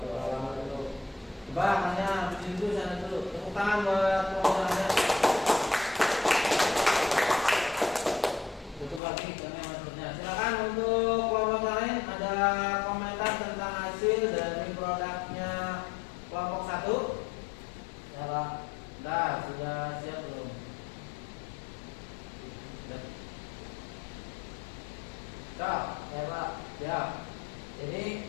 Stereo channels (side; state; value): right; drops out; at 9.0 s